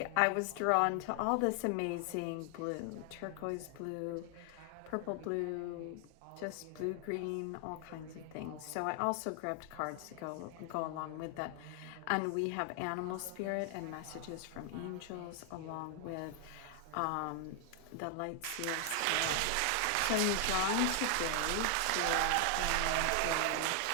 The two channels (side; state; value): both; different; correlation 0.00